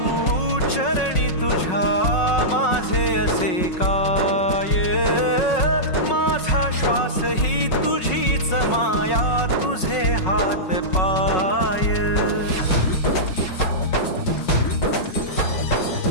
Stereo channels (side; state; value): right; late; 5.4 ms